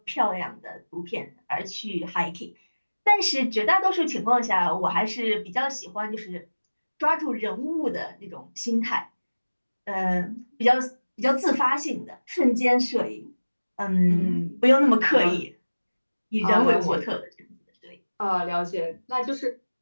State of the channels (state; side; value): inverted; both; correlation -1.00